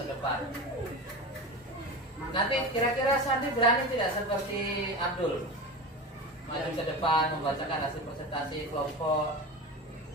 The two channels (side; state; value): both; normal; correlation 0.27